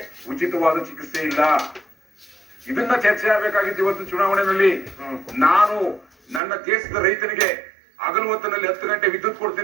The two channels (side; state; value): left; drops out; at 6.4 s